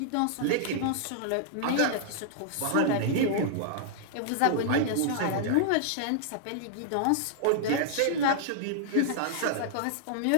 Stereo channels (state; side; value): different; both; correlation -0.01